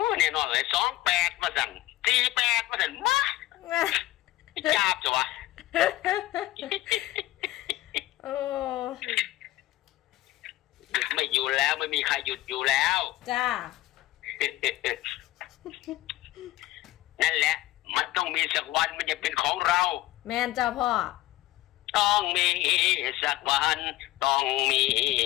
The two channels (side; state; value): right; quieter; 16.7 dB